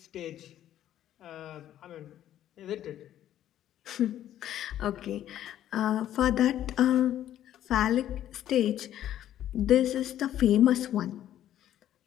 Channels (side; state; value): right; quieter; 11.7 dB